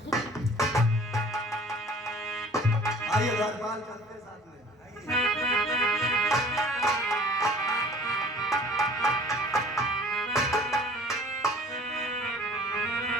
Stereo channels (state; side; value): normal; both; correlation 0.50